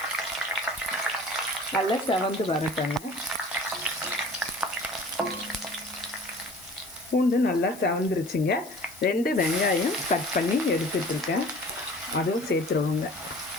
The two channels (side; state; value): left; noise; hiss, 18 dB below the sound